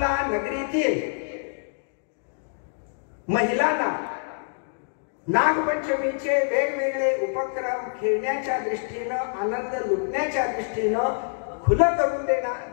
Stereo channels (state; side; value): silent; right; digital silence